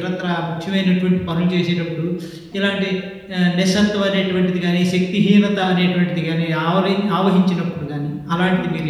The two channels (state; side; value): identical; both; correlation 1.00